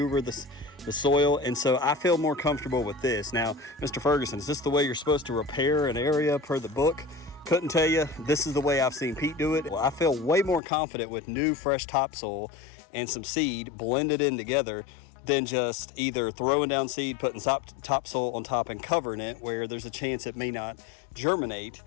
the soil. And so I feel more comfortable with this. Now, Mr. Ferguson, is this the way you're supposed to repair an area per the book? Couldn't tell you. This is the way I've seen Pete do it. Well, I feel way more confident with new fresh topsoil and some seed blended in together than just either throwing down seed, putting topsoil on top and covering it where there's a chance it may not germinate,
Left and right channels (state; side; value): drops out; right; at 10.6 s